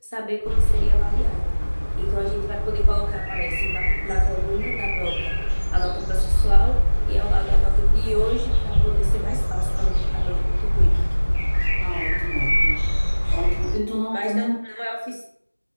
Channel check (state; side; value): inverted; both; correlation -1.00